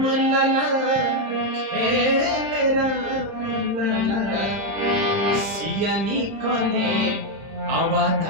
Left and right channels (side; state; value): left; late; 30 ms